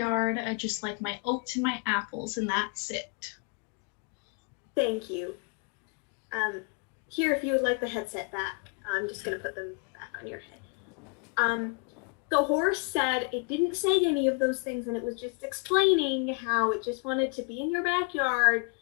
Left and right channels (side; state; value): right; quieter; 33.9 dB